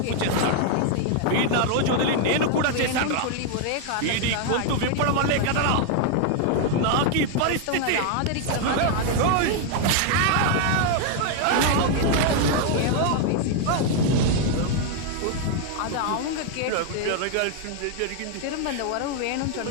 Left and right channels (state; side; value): different; both; correlation 0.00